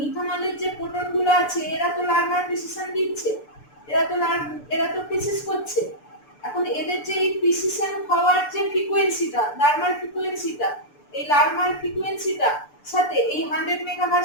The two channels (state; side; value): late; right; 6.8 ms